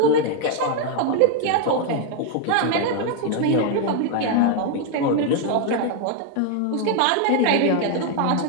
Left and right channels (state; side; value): different; both; correlation 0.00